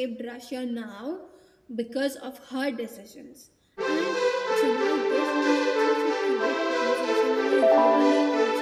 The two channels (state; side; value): identical; both; correlation 1.00